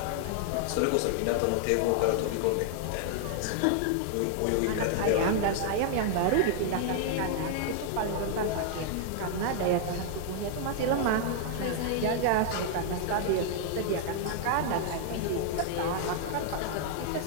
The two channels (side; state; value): both; different; correlation 0.00